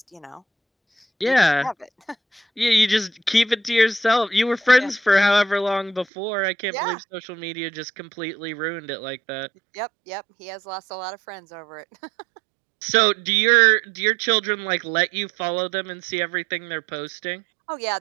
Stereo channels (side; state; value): left; drops out; at 6.1 s